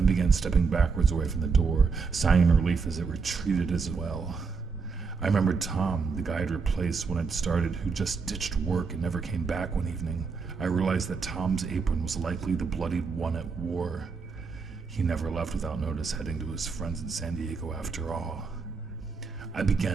began stepping backwards away from the door, sighing in relief as it retreated as well. I remembered Tom, the guy I'd replaced when I'd started, who just ditched work and never came back one evening. I realized that Tom's apron was likely the bloodied one at war. He never left without notice, heading to his friends in San Diego after all. I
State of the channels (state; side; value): quieter; left; 5.0 dB